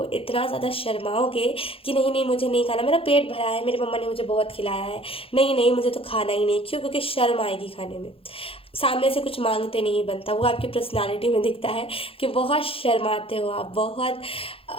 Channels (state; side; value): late; right; 0.27 ms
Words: इतना ज़्यादा शर्माओगे कि नहीं नहीं मुझे नहीं खाना, मेरा पेट भरा है, मेरी मम्मा ने मुझे बहुत खिलाया है, नहीं नहीं मुझे तो खाना ही नहीं। क्यों? क्योंकि शर्म आएगी खाने में, सामने से कुछ मांगते नहीं बनता। वो आपकी पर्सनालिटी में दिखता है कि बहुत शर्माते हो आप, बहुत